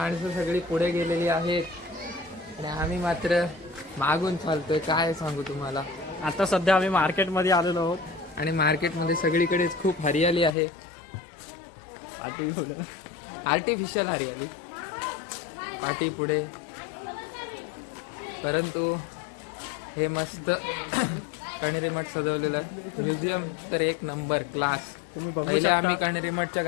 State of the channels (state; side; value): drops out; right; at 10.5 s